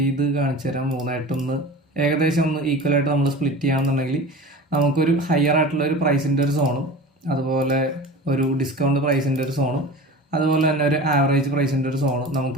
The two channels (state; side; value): normal; both; correlation 0.35